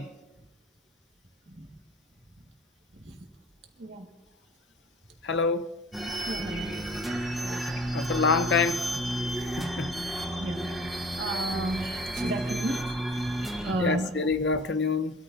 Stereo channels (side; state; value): both; normal; correlation 0.44